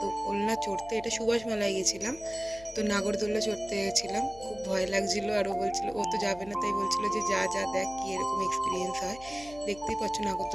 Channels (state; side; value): noise; left; hum, 19 dB below the sound